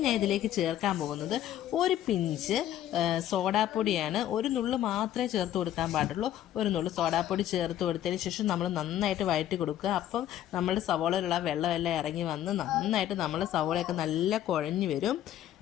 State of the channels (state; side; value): quieter; right; 11.9 dB